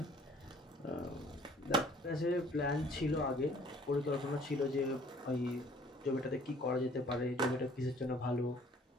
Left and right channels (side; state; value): both; normal; correlation 0.56